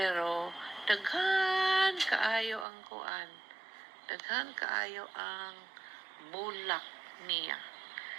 daghan kaayo ang kuan. Daghan kaayo ang bulak niya.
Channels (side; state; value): left; drops out; at 2.7 s